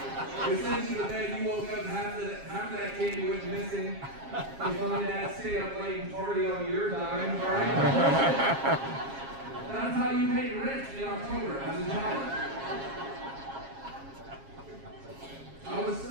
It sends you to bed, you woke up, half of that candy went missing. Your mom and dad stayed up late and party on your dime, alright? That's how you paid rent in October as a child. I was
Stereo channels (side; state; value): left; late; 7.4 ms